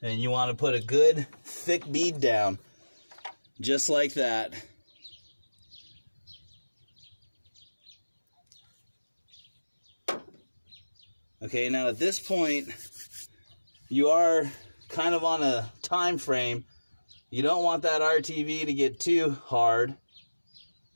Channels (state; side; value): inverted; both; correlation -1.00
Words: And you want to put a good thick bead down, just like that. Okay, now at this point, you are kind of on a time frame. You don't want that RTV to get too hard.